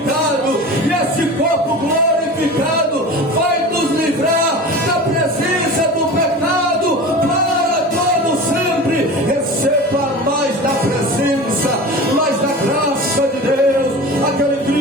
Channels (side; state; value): both; normal; correlation 0.33